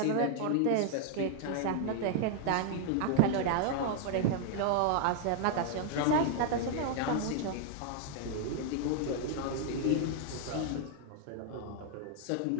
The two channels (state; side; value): different; both; correlation 0.00